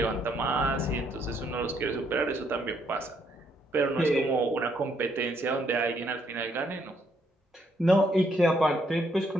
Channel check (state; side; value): normal; both; correlation 0.72